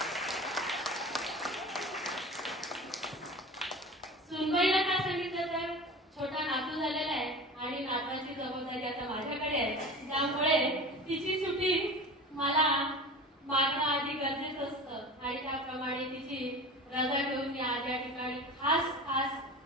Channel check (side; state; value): both; normal; correlation 0.34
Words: सुनबाईला काय सांगितलं तर छोटा नातू झालेला आहे आणि नाताची जबाबदारी आता माझ्याकडे आहे, त्यामुळे तिची सुट्टी मला मागणं आधी गरजेचं असतं आणि त्याप्रमाणे तिची रजा घेऊन मी आज या ठिकाणी खास